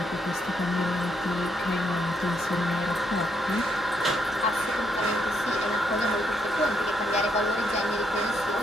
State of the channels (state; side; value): normal; both; correlation 0.76